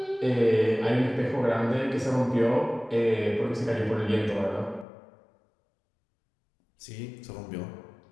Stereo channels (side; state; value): right; drops out; at 4.9 s